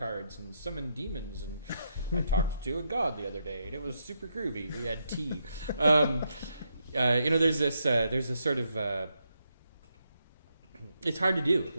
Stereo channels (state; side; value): inverted; both; correlation -0.80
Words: and summon demons, and I talked to a god the other day, and it was super groovy. We had tea. There's this sort of, it's hard to do.